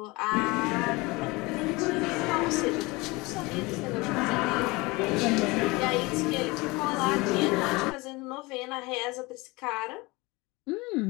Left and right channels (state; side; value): quieter; right; 23.8 dB